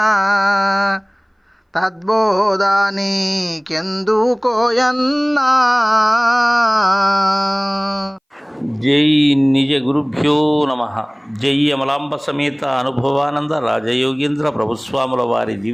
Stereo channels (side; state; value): both; identical; correlation 1.00